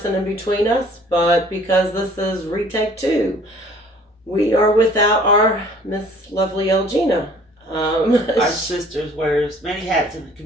in between us, but because this is retake 2, we are without our Miss Lovely Elgina. Our sister wears many hats in the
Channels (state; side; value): normal; both; correlation 0.54